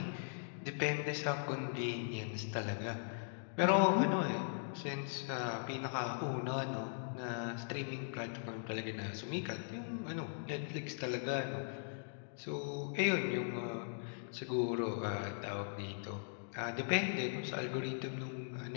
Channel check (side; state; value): right; silent; digital silence